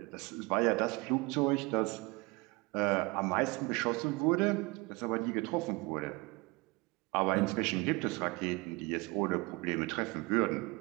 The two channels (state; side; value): quieter; left; 25.5 dB